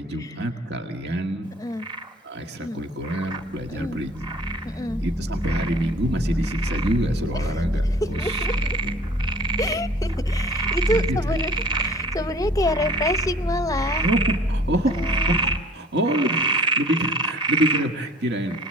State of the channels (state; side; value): normal; both; correlation 0.52